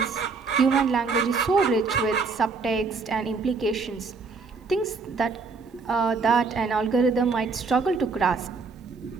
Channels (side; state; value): left; quieter; 4.4 dB